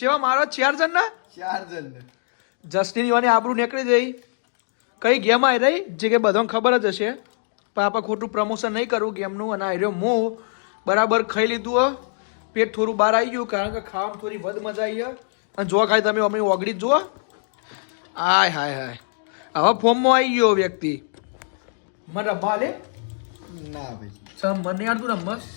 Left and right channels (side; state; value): right; silent; 63 dB below the other